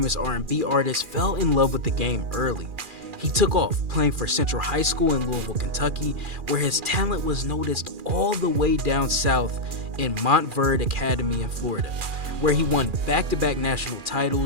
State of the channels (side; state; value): left; late; 2.4 ms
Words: R&B artist, fell in love with the game early. He took off playing for Central High School in Louisville, Kentucky, where his talent was noticed all the way down south in Montverde Academy in Florida, where he won back-to-back national